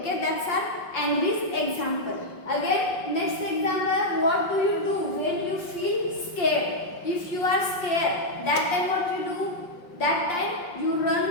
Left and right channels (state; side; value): late; right; 5.5 ms